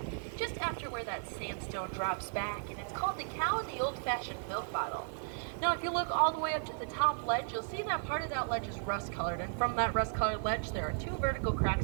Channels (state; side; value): silent; left; digital silence